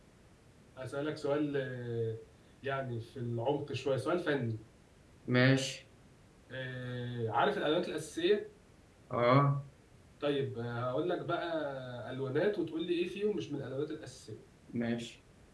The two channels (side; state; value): both; identical; correlation 1.00